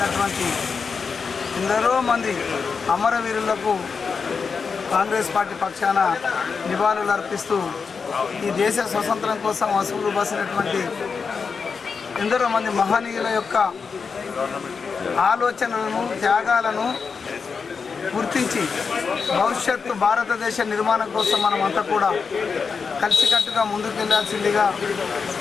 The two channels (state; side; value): quieter; right; 5.4 dB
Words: ఎందరో మంది అమరవీరులకు కాంగ్రెస్ పార్టీ పక్షాన నివాళులు అర్పిస్తూ ఈ దేశ స్వతంత్రం కోసం అసువులు బాసినటువంటి ఎందరో మంది మహనీయుల యొక్క ఆలోచనలను, త్యాగాలను గుర్తించి భవిష్యత్తు భారతదేశ నిర్మాణం కోసం మనమంతా కూడా కలిసికట్టుగా ముందుకెళ్లాల్సిందిగా